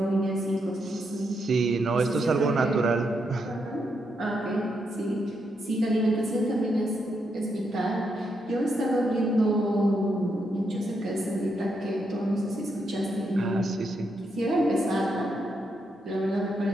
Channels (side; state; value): both; normal; correlation 0.81